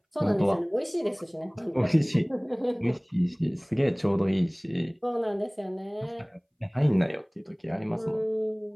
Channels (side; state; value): both; identical; correlation 1.00